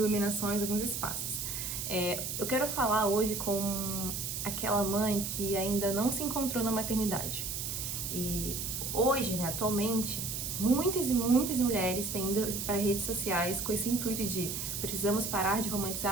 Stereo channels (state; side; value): noise; right; hiss, 4 dB below the sound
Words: alguns espaços. Eu quero falar hoje com aquela mãe que ainda não se encontrou na maternidade. E hoje, né, atualmente, muitas e muitas mulheres têm ido para redes sociais com esse intuito de precisamos parar de